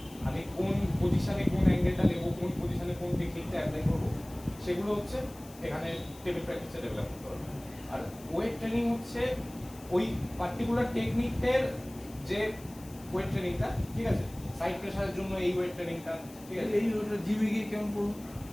আমি কোন পজিশনে কোন অ্যাঙ্গেলটা নেব, কোন পজিশনে কোন টেকনিকটা অ্যাপ্লাই করবো, সেগুলো হচ্ছে এখানে টেবিল প্র্যাকটিসে ডেভেলপ করতে পারবে। আর ওয়েট ট্রেনিং হচ্ছে ওই পার্টিকুলার টেকনিকের যে ওয়েট ট্রেনিংটা, ঠিক আছে? সাইড প্রেসারের জন্য এই ওয়েট ট্রেনিংটা, ঠিক আছে? এই জিমে গিয়ে কেমন করবো?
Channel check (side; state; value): left; noise; hiss, 21 dB below the sound